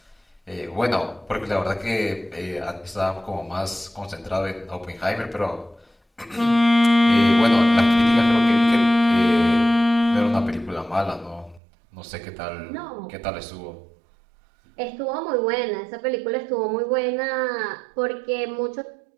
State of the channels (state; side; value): drops out; left; at 11.6 s